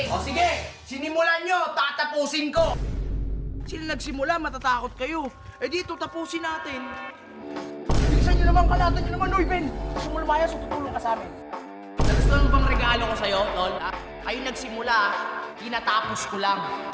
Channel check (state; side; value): identical; both; correlation 1.00